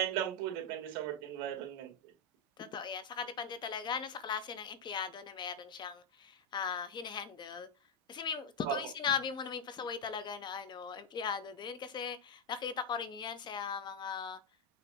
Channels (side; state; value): both; normal; correlation 0.01